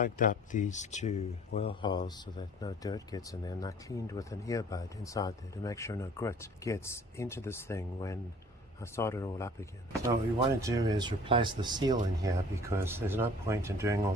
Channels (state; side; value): normal; both; correlation 0.51